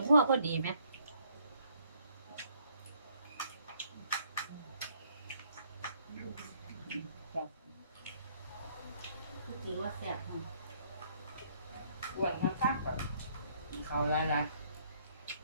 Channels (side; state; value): both; inverted; correlation -0.65